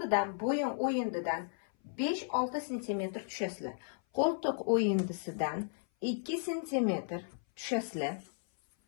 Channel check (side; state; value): right; silent; 55 dB below the other